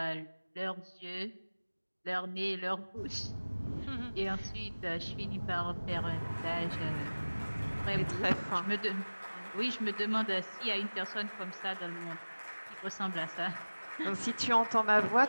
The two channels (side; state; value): both; inverted; correlation -1.00